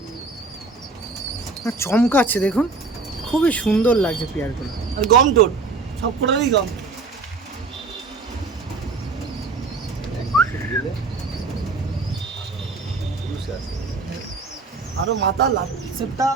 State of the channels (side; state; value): left; quieter; 4.0 dB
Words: চমকাচ্ছে দেখুন, খুবই সুন্দর লাগছে পেয়ারগুলো। আর গম টোট সব কটারই গম। আরো মাথা লাস্টটা